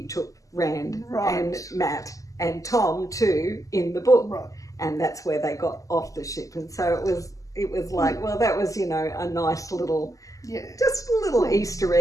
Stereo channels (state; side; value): late; right; 0.16 ms